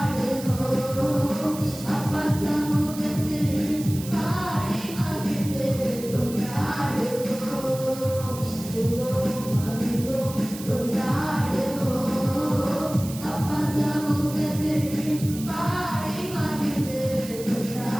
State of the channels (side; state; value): right; noise; hiss, 13 dB below the sound